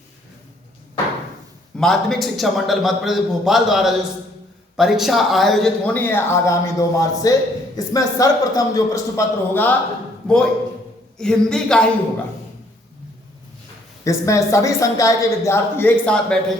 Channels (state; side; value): normal; both; correlation 0.65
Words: माध्यमिक शिक्षा मंडल मध्य प्रदेश भोपाल द्वारा जो परीक्षा आयोजित होनी है आगामी 2 मार्च से, इसमें सर्वप्रथम जो प्रश्न पत्र होगा वो हिंदी का ही होगा। इसमें सभी संकाय के विद्यार्थी एक साथ